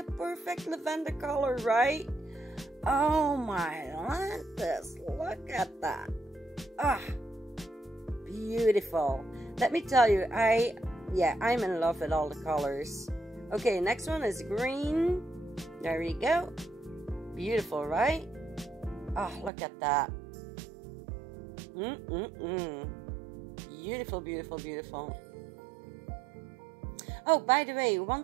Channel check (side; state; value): left; drops out; at 19.5 s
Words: perfect lavender color, right? Oh my goodness, look at that. Ah, beautiful. Let me tell you, I'm in love with all the colors. Okay, next one is green. There we go. Beautiful, right? Oh, look at that. Beautiful, beautiful, beautiful. Oh, by the way, one